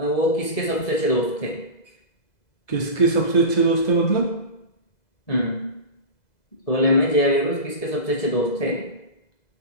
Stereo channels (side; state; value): right; late; 2.0 ms